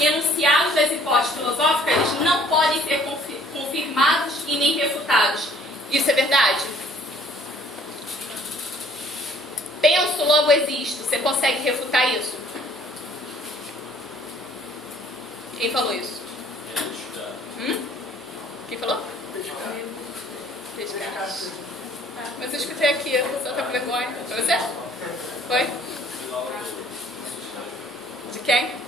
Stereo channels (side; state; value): both; normal; correlation 0.58